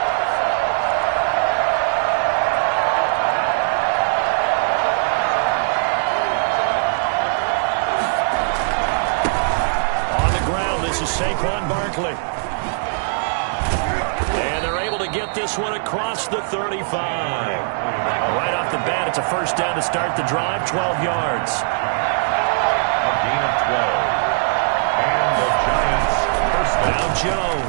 On the ground, this is Saquon Barkley. And they're able to get this one across the 35. Right off the bat, it's a first down to start the drive, 12 yards. A gain of 12. And the Giants first down. Now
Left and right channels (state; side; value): silent; left; digital silence